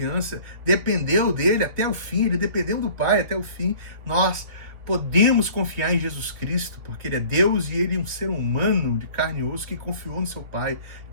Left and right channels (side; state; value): left; late; 3.1 ms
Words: dependeu dele até o fim, ele dependeu do Pai até o fim. Nós podemos confiar em Jesus Cristo, porque Ele é Deus e Ele é um ser humano de carne e osso que confiou no seu Pai,